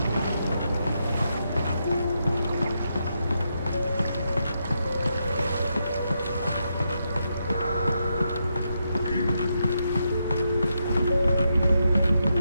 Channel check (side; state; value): both; inverted; correlation -0.82